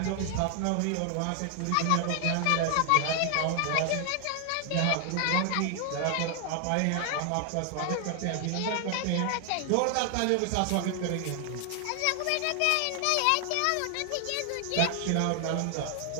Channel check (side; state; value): both; different; correlation 0.00